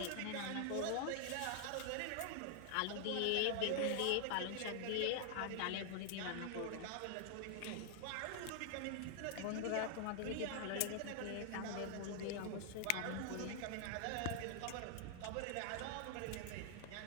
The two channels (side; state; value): both; different; correlation 0.00